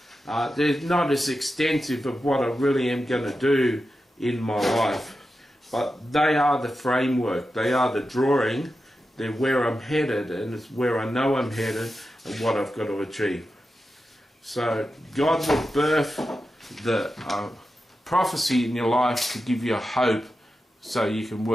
they're not as extensive of what I really am going to do in my life. But they are the framework, they are the drawing, they're where I'm headed, and it's where I know I'm headed and what I've got to achieve. So God will birth the prophecy in your life to give you hope so you can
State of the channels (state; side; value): normal; both; correlation 0.91